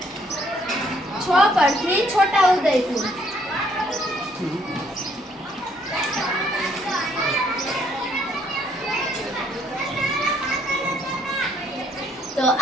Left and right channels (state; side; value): normal; both; correlation 0.67